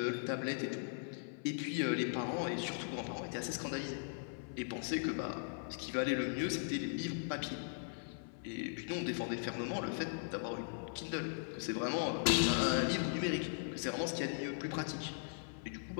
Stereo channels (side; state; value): right; silent; 52 dB below the other